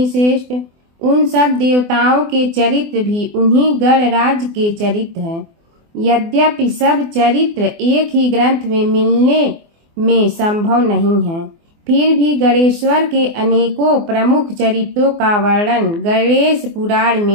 श्रेष्ठ, उन सब देवताओं के चरित्र भी उन्हीं गणराज के चरित्र हैं। यद्यपि सब चरित्र एक ही ग्रंथ में मिलने में संभव नहीं है, फिर भी गणेश्वर के अनेकों प्रमुख चरित्रों का वर्णन गणेश पुराण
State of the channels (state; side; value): late; left; 24 ms